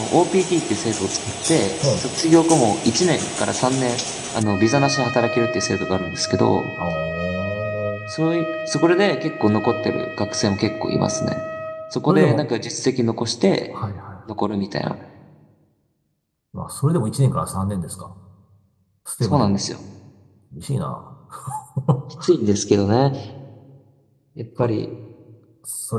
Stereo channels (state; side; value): identical; both; correlation 1.00